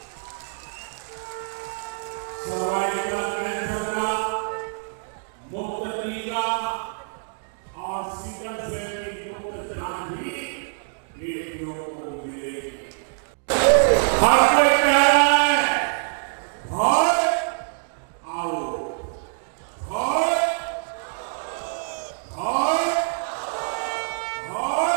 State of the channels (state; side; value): silent; left; digital silence